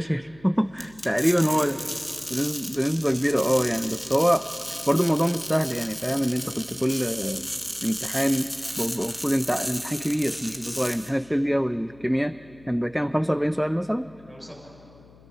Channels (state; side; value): noise; left; hum, 25 dB below the sound